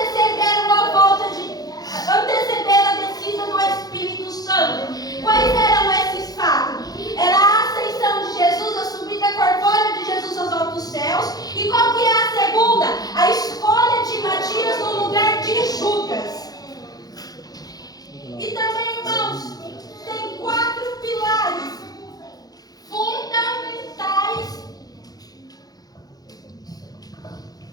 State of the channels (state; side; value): late; right; 0.19 ms